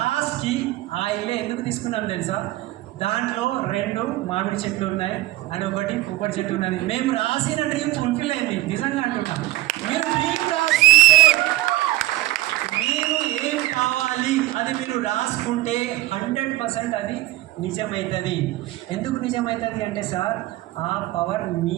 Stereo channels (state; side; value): quieter; left; 17.4 dB